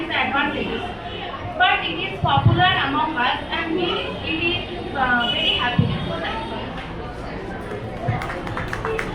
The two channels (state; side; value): identical; both; correlation 1.00